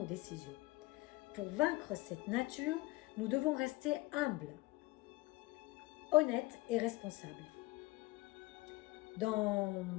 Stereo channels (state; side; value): quieter; right; 21.2 dB